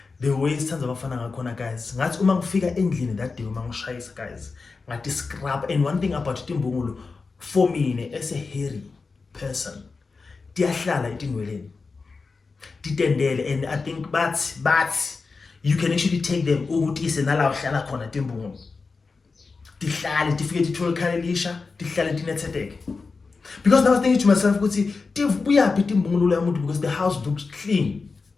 There were tons of abafana ngakhona, guys. Ngathi uma ngifika endlini that day uma ngishayisa, guys. Ngathi scrub. And one thing about timbungulu, for me, as a hairy person, tiyahlala etinweleni. Titendele, and I think but you can actually take them ukuthi isenala uhlala khona timbungulu. Tihlale tifike tithole khalelisha, tihlale tinethetheke. Because I was thinking to myself, ukuthi buyaphi timbungulu yamuntu because the house looks clean.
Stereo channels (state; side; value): quieter; right; 4.3 dB